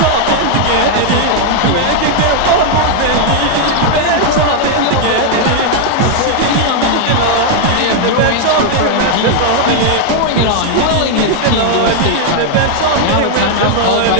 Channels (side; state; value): both; different; correlation 0.00